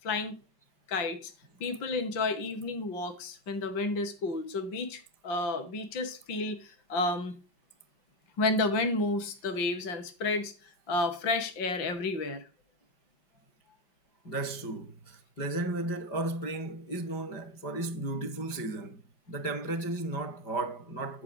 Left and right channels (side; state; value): right; late; 5.1 ms